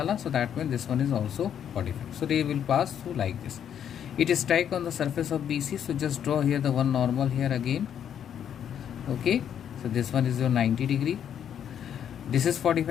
R, so that means this one is also 45. So ray will pass through like this. It is strike on the surface of BC, so just draw here the one normal here again. Okay, so this one is your 90 degree. This is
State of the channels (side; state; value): right; quieter; 9.1 dB